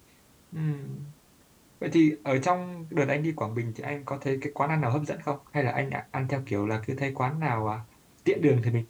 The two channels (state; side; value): identical; both; correlation 1.00